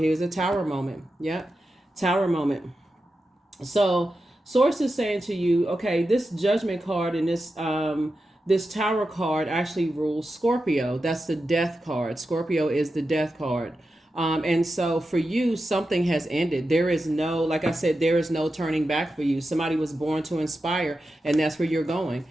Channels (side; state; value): both; normal; correlation 0.90